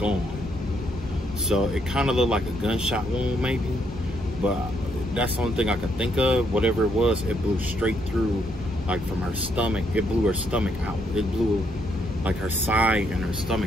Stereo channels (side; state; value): both; normal; correlation 0.74